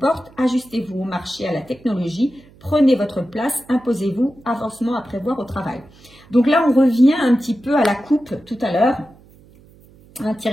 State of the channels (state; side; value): noise; right; hum, 26 dB below the sound